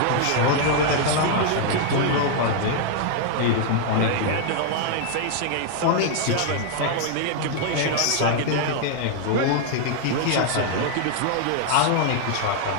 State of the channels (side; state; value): both; different; correlation 0.00